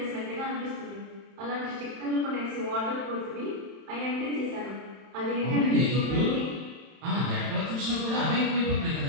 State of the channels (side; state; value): left; late; 31 ms